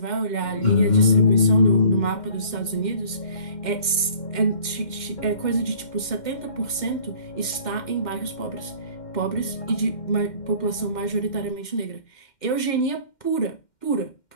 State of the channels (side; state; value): right; late; 2.1 ms